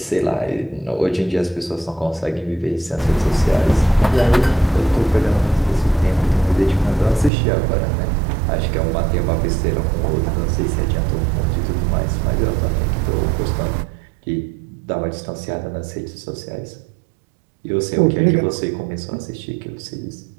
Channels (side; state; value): left; drops out; at 7.3 s